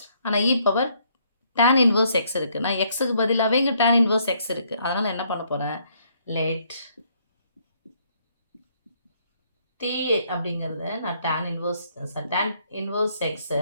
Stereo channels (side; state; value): both; inverted; correlation -0.69